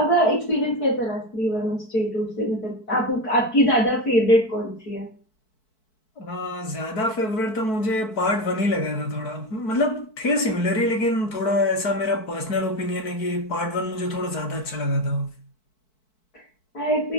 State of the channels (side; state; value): right; late; 4.6 ms